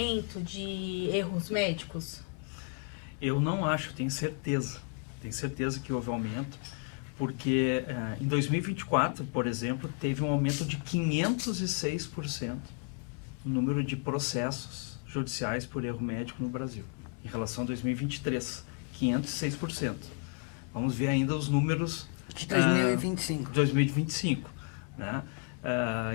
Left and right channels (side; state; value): right; quieter; 35.5 dB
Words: de erros médicos? Eu não acho, tenho certeza. Tenho certeza que houve aumento, porque em 2024, por exemplo, teve um aumento de 506% no número de processos judiciais por erro médico no Brasil, em relação a 2023, 506%. Vamos ver ainda os números de 2025. 2025, né?